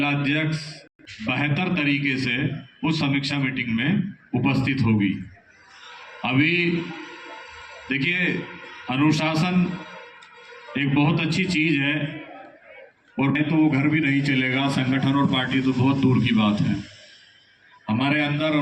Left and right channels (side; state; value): both; identical; correlation 1.00